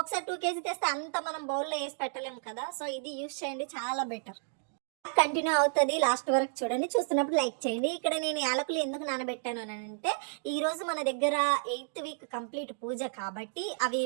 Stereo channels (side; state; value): left; silent; digital silence